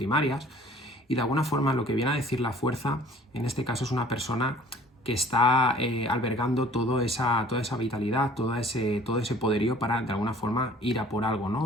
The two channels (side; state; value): both; normal; correlation 0.51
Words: y de alguna forma lo que viene a decir la fuerza, en este caso es una persona que está albergando toda esa vitalidad, todo ese poderío para de alguna forma ir a por algo,